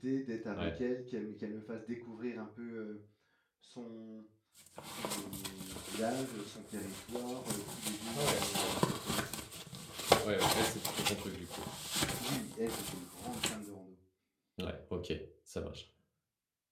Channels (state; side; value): identical; both; correlation 1.00